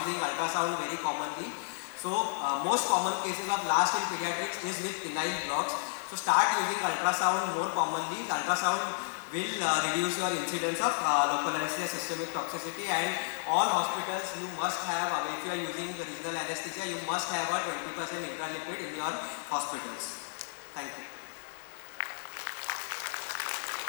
ultrasound very commonly. So most common cases of last in pediatrics is with penile blocks. So start using ultrasound more commonly. Ultrasound will reduce your incidence of local anesthesia systemic toxicity, and all hospitals you must have, if you are using the regional anesthesia, you must have a 20% intralipid in your hospitals. Thank you.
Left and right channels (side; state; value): right; silent; digital silence